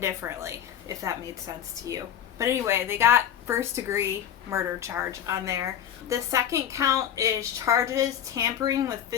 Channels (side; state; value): right; quieter; 9.8 dB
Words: if that made sense to you. But anyway, they got first degree murder charge on there. The second count is charges tampering with